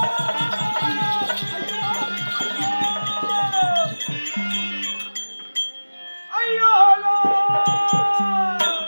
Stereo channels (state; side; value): inverted; both; correlation -1.00